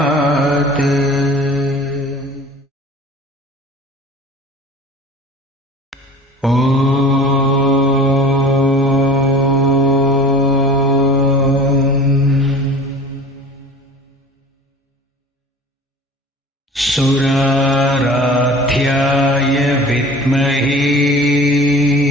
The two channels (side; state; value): both; normal; correlation 0.42